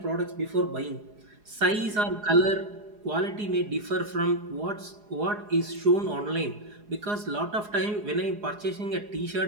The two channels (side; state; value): left; late; 4.8 ms